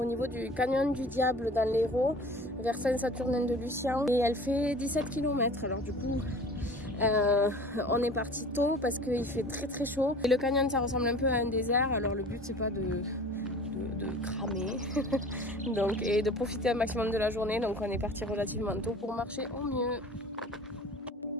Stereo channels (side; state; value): both; normal; correlation 0.43